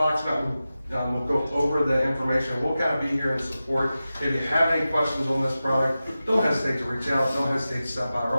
Mountain will go over the information. We'll kind of be here in support. If you have any questions on this product, don't hesitate to reach out. Don't hesitate to stop by our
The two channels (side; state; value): both; inverted; correlation -0.94